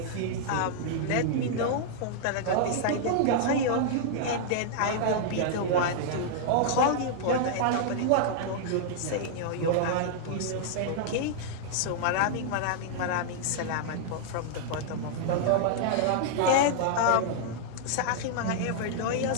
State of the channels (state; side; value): different; both; correlation -0.01